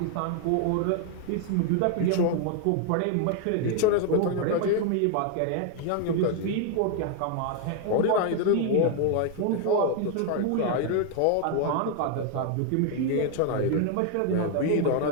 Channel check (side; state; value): both; different; correlation 0.01